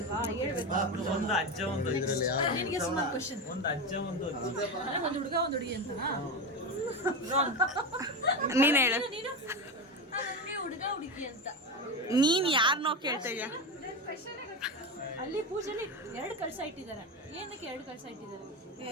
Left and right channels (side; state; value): both; normal; correlation 0.18